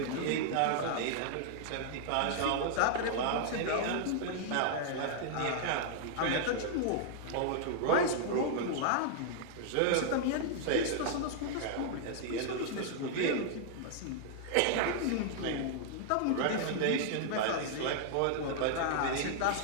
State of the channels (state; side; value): different; both; correlation -0.01